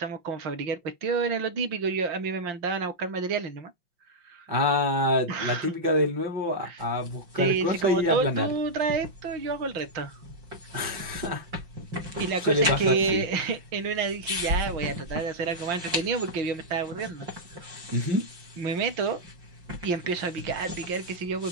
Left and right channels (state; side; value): late; left; 5.7 ms